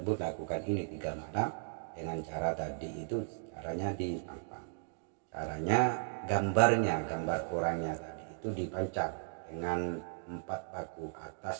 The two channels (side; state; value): left; silent; digital silence